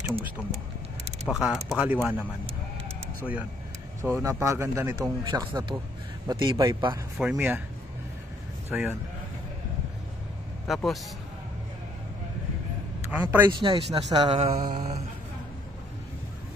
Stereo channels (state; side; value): normal; both; correlation 0.66